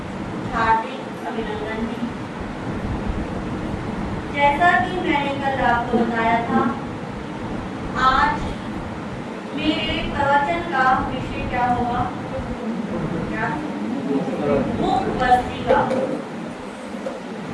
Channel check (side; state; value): both; identical; correlation 1.00